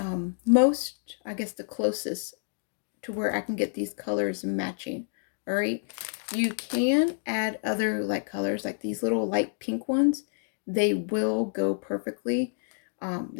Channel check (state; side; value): silent; right; digital silence